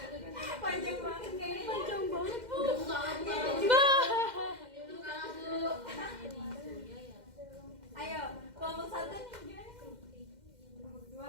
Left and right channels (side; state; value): left; late; 2.1 ms